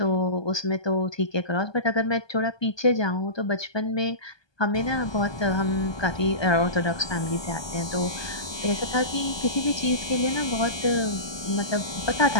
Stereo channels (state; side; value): late; right; 1.2 ms